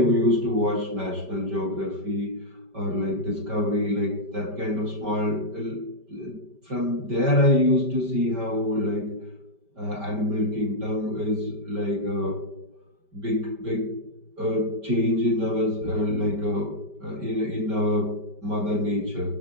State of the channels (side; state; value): left; late; 5.1 ms